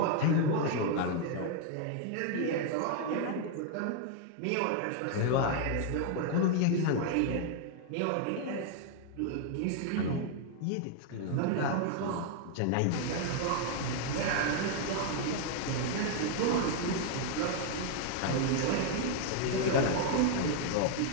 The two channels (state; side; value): different; both; correlation 0.00